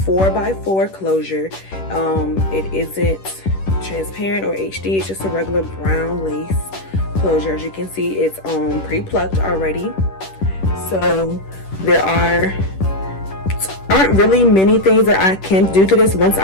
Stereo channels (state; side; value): late; right; 10 ms